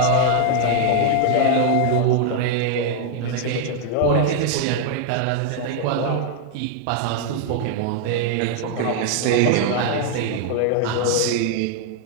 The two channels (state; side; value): different; both; correlation 0.00